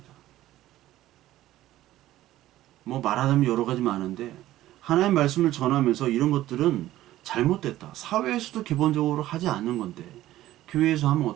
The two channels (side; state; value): left; quieter; 14.7 dB